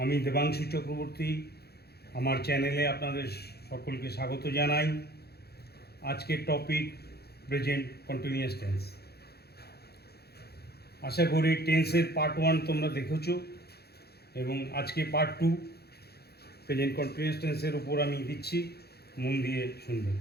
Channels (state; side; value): late; right; 0.46 ms